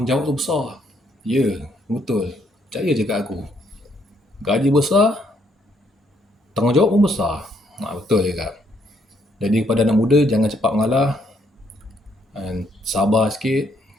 tu besar. Ya, betul. Percaya je kat aku. Gaji besar, tanggungjawab pun besar. Betul je kak. Jadi kepada anak muda, jangan cepat mengalah. Sabar sikit.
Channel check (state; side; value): normal; both; correlation 0.71